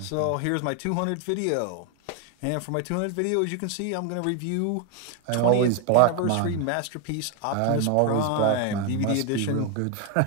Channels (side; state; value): both; different; correlation 0.01